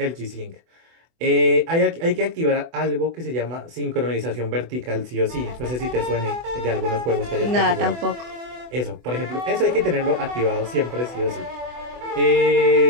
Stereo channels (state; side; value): late; left; 24 ms